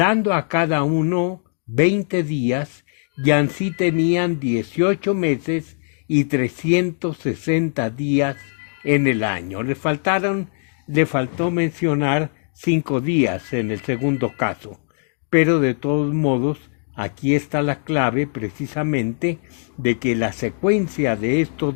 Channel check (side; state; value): right; silent; digital silence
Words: a cada uno 20 días, y así tenían 18 meses y 360 días en el año. Le faltó mencionar 5 días en el segundo caso, pero de todos modos aquí está la clave precisamente de que la secuencia de estos